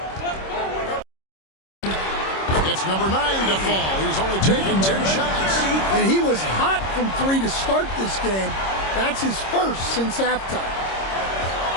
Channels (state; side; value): late; right; 26 ms